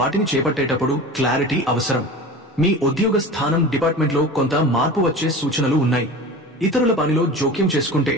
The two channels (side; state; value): both; normal; correlation 0.34